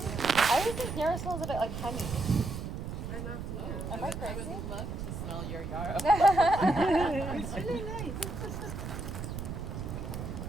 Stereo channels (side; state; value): right; noise; rumble, 6 dB below the sound